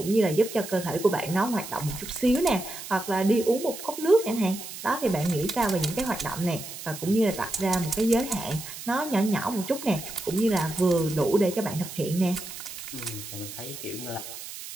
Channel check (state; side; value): noise; right; hiss, 11 dB below the sound